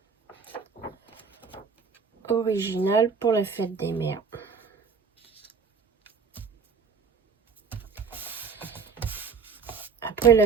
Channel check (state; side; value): quieter; left; 5.6 dB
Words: originale pour la fête des mères. Après